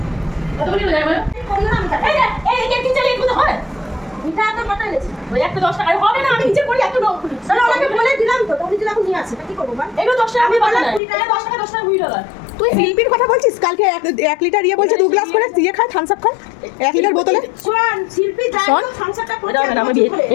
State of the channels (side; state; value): right; drops out; at 11.0 s